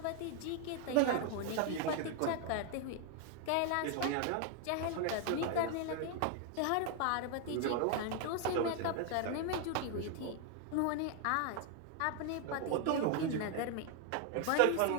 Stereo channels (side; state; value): both; different; correlation 0.00